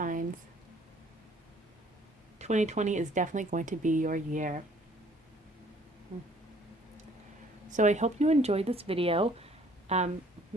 2020 is definitely going to be your year. So I hope you enjoyed this video.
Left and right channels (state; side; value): normal; both; correlation 0.58